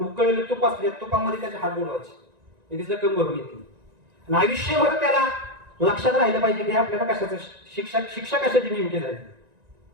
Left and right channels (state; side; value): late; left; 1.9 ms